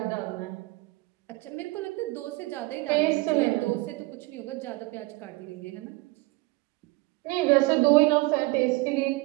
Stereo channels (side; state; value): left; quieter; 22.3 dB